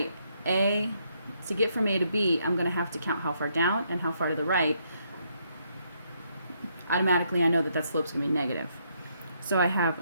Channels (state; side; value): inverted; both; correlation -0.74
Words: to get from A to B, I'm going to have to count how far down and how far to the right. Automatically, I know that that slope's going to be negative. So